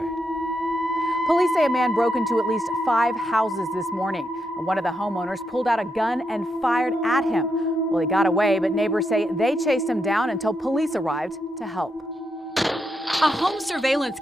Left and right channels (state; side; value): normal; both; correlation 0.82